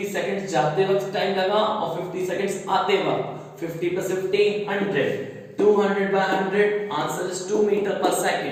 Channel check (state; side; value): identical; both; correlation 1.00